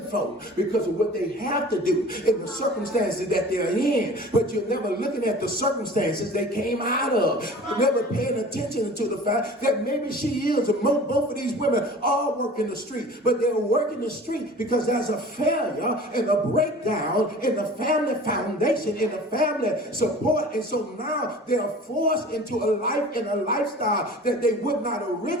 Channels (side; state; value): both; normal; correlation 0.42